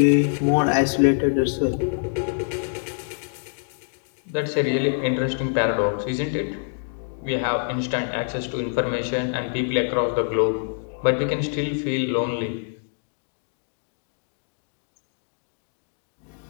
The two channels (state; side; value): silent; right; digital silence